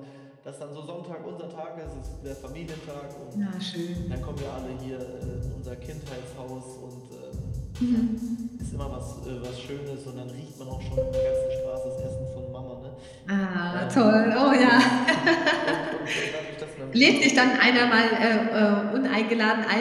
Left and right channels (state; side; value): identical; both; correlation 1.00